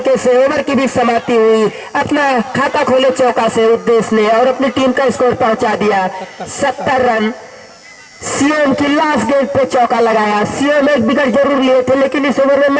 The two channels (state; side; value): identical; both; correlation 1.00